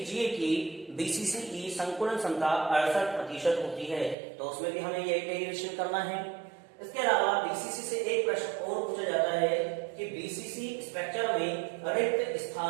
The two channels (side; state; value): left; drops out; at 4.2 s